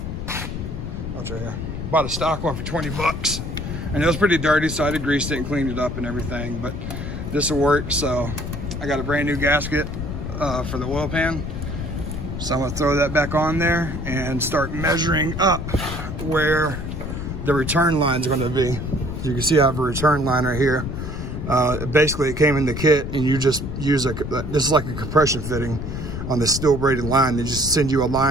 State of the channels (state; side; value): noise; left; rumble, 6 dB below the sound